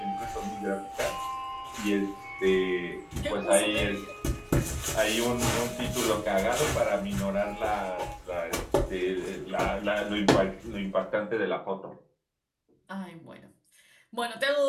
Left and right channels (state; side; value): identical; both; correlation 1.00